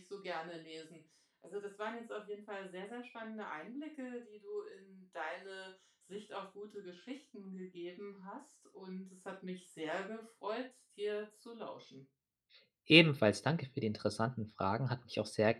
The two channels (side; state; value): both; identical; correlation 1.00